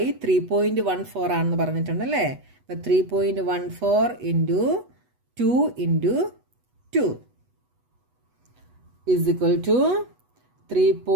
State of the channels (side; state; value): left; late; 8.1 ms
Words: 3.14 ആണെന്ന് പറഞ്ഞിട്ടുണ്ട് അല്ലേ. അപ്പം 3.14 into 2 into 2 is equal to